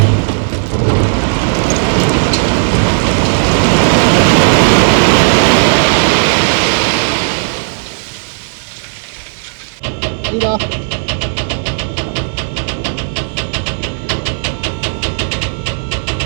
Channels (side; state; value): left; silent; 63 dB below the other